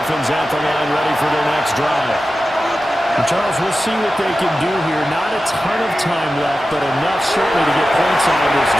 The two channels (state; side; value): normal; both; correlation 0.93